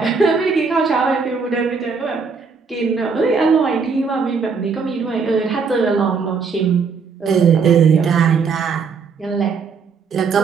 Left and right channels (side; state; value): left; quieter; 5.3 dB